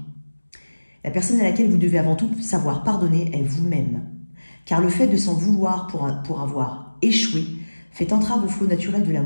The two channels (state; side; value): inverted; both; correlation -1.00